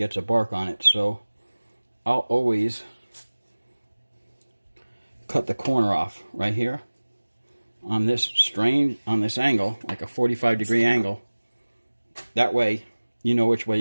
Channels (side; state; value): both; inverted; correlation -1.00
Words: a bark on it. So I'll always cut the corner off right here on this angle, like a 45-degree angle. That way you know which way